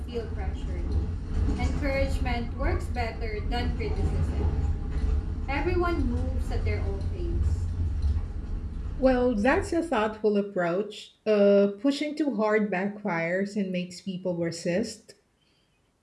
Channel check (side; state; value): both; identical; correlation 1.00